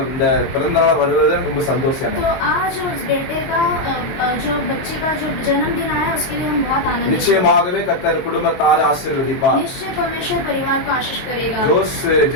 இந்த பிறந்தநாள் வருவது ரொம்ப சந்தோஷம். तो आज उस बेटे का जो बच्चे का जो जन्मदिन आया उसके लिए हम बहुत आनंदित हैं। நிச்சயமாகவே கர்த்தர் குடும்பத்தாரை ஆசீர்வதிப்பார். निश्चय परमेश्वर परिवार को आशीष करेगा। ஜோஸ்,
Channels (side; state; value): right; late; 22 ms